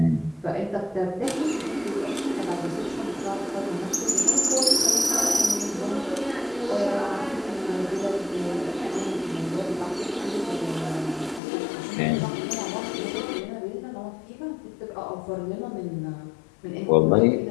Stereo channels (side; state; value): right; drops out; at 11.4 s